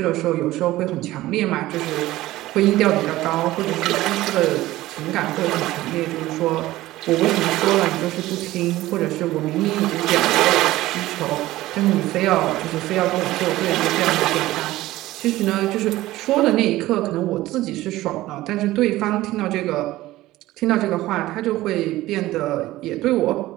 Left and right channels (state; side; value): quieter; left; 16.7 dB